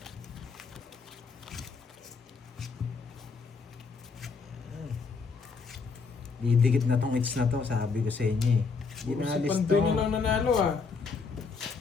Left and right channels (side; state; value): right; quieter; 4.8 dB